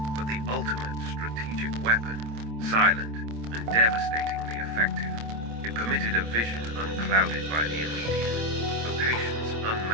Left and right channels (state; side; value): late; left; 26 ms